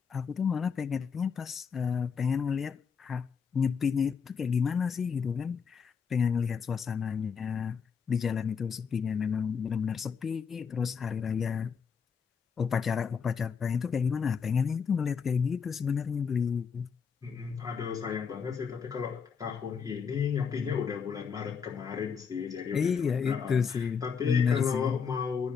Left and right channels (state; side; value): quieter; right; 6.3 dB